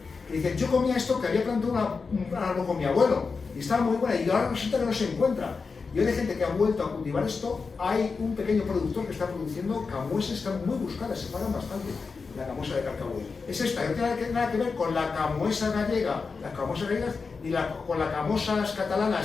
que dice, yo comía esto, que había plantado un árbol con mi abuelo, y estaba muy buena, y ahora resulta que no se encuentra. Y hoy hay gente que ha vuelto a cultivar esto. Hay un pequeño productor que está produciendo camuesas, están muy buscadas, se pagan bastante. la camoesa de Carcabuey. Es esta, no tiene nada que ver con la camoesa gallega, las camosas gallegas, ni con las camosas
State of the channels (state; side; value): quieter; right; 4.8 dB